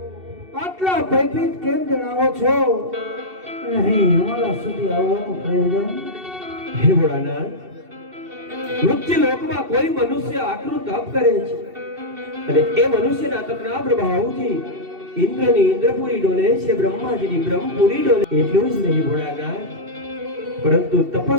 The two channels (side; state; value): left; late; 2.7 ms